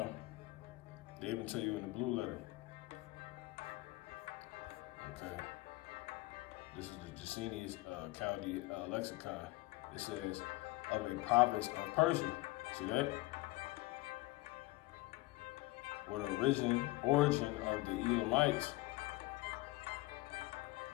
they even tell you in the blue letter. Okay. This is the Jacinius Chaldee lexicon. It says, of a province of Persia. See that? Where the origin of the Elamites,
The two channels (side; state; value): right; quieter; 20.5 dB